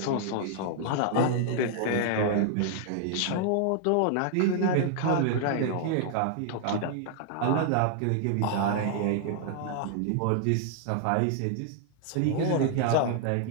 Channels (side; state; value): both; different; correlation 0.00